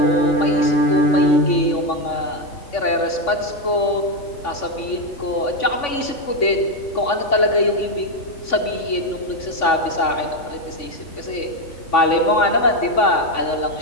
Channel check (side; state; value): right; late; 3.5 ms